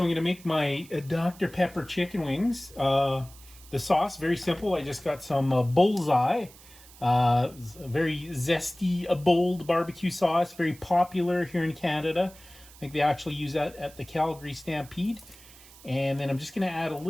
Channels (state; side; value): noise; right; hiss, 22 dB below the sound